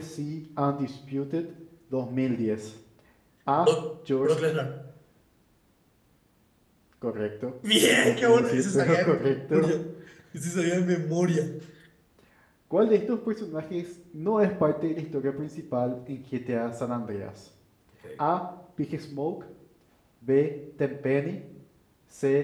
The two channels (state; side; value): identical; both; correlation 1.00